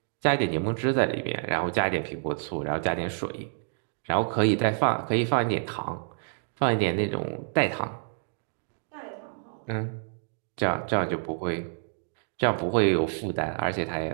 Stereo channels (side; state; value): left; silent; digital silence